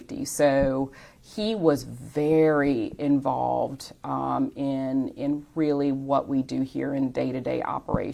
So he was very involved in really what we do here in day-to-day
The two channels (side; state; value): both; identical; correlation 1.00